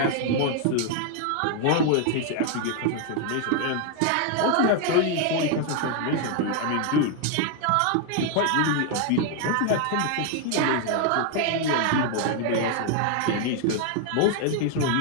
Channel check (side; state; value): both; different; correlation 0.00